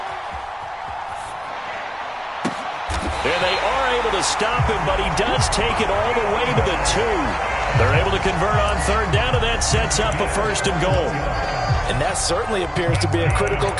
And they are able to stop him, but he does take it all the way to the 2. They're able to convert on 3rd down, and that sets up a 1st and goal. And that certainly appears to be a critical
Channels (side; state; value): both; identical; correlation 1.00